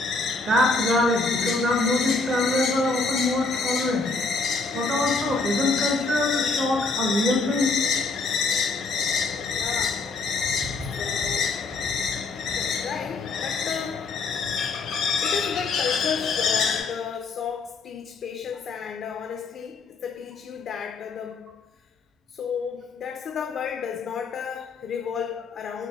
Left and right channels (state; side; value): quieter; right; 3.8 dB